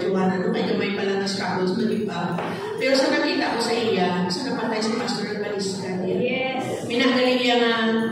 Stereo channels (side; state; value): both; identical; correlation 1.00